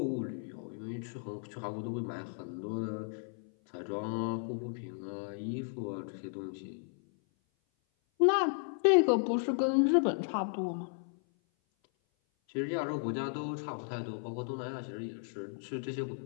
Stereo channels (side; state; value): right; silent; 55 dB below the other